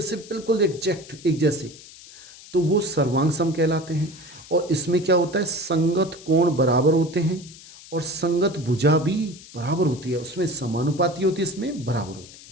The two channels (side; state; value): left; noise; hiss, 19 dB below the sound